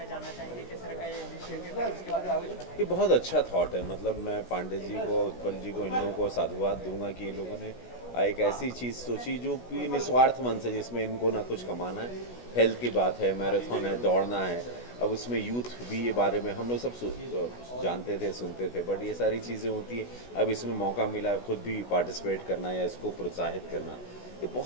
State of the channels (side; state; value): right; late; 16 ms